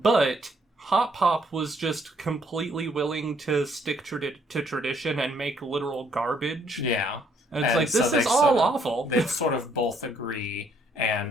Hotpop was just completely willing to stick to tradition and make literal garbage. Yeah. And it's like, this is all awful. They sort of both agree,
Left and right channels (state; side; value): normal; both; correlation 0.68